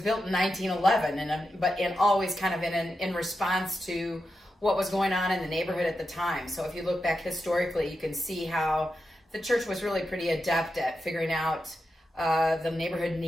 in 1911, but always kind of in response to what was going on in the neighborhood at the time. So if you look back historically, you can see how the church was really pretty adept at figuring out the neighborhood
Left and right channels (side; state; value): both; normal; correlation 0.88